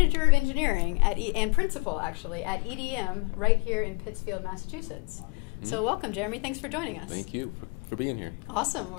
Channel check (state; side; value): quieter; right; 31.0 dB